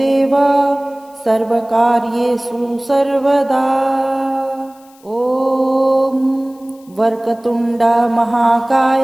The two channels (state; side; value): noise; left; hiss, 29 dB below the sound